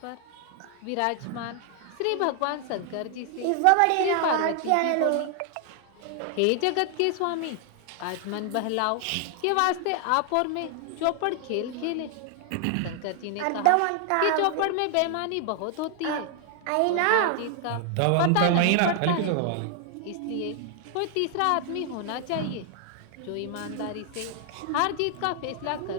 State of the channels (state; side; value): different; both; correlation 0.00